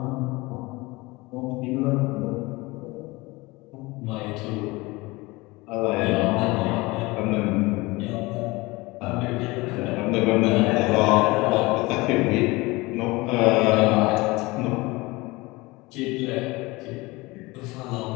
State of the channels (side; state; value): right; quieter; 22.7 dB